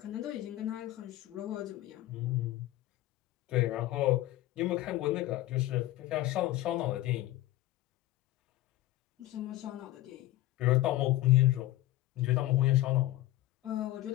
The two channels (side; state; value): right; quieter; 16.0 dB